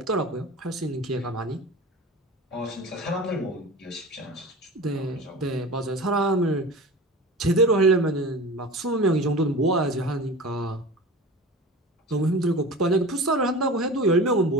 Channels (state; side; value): normal; both; correlation 0.34